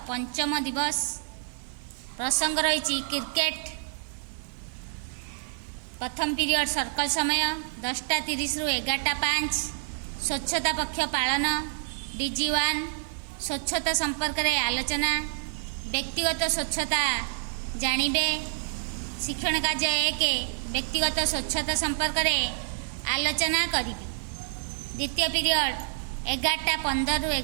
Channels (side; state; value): left; silent; digital silence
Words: पंचम दिवस। प्रसंग रही क्रिकेट। प्रथम पीरियड सर्कल समय 10:30 रु 11:05। स्वच्छता पक्ष पालन। DG1 स्वच्छता संपर्क में आलोचना। व्यक्तिगत स्वच्छता जानिबे। शिक्षण कार्य 1 व्यक्तिगत स्वच्छता संपर्क में आलोचना करी। द्वितीय पीरियड 11:15 रु